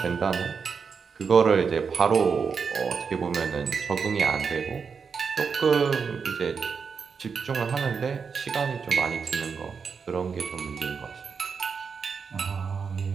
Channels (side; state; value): left; quieter; 5.8 dB